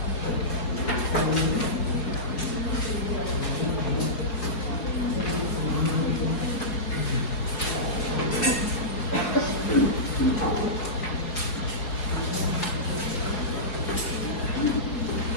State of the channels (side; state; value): right; late; 4.9 ms